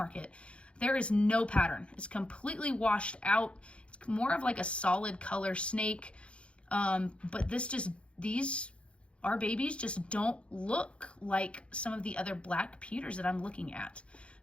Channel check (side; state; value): right; late; 0.059 ms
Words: there is no pattern. It's completely washed out. It's more of like a solid color snake. But our babies just don't look like some of the other black pewters that I'm looking at.